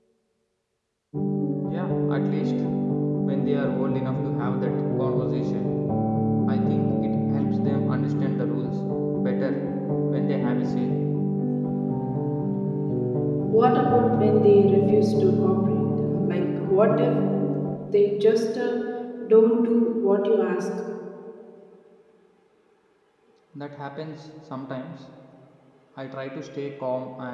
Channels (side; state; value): both; identical; correlation 1.00